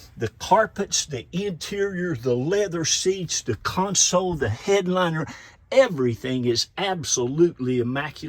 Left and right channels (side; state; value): both; identical; correlation 1.00